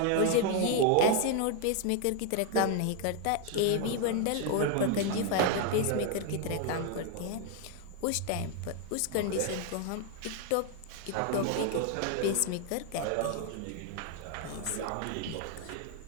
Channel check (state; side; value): different; both; correlation 0.00